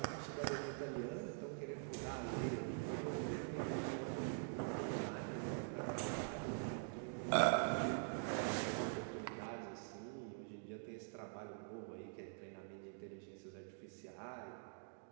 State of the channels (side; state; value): left; silent; digital silence